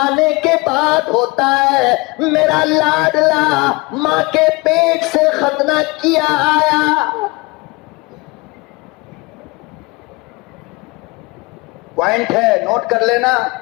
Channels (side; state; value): right; quieter; 25.1 dB